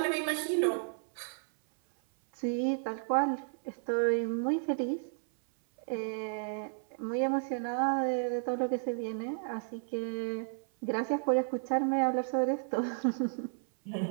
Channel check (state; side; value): silent; left; 56 dB below the other